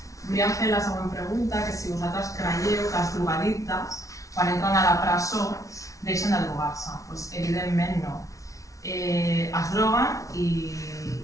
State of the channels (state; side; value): late; right; 0.16 ms